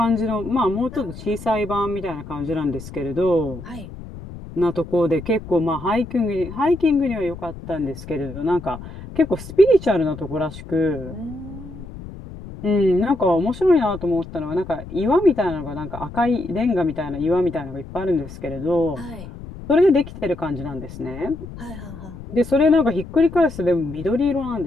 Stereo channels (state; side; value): noise; left; rumble, 13 dB below the sound